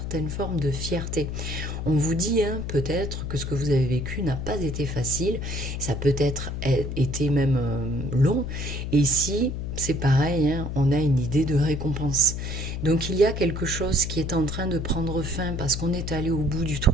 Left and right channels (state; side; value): noise; left; hum, 4 dB below the sound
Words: forme de fierté. On vous dit peut-être que ce que vous avez vécu n'a pas été facile, ça peut-être été même long, et ici, c'est pareil, on a une idée de récompense. Donc il y a quelque chose qui est en train de prendre fin parce qu'on est allé au bout du